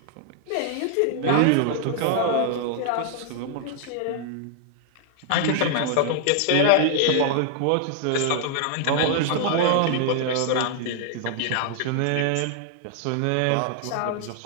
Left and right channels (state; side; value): different; both; correlation 0.00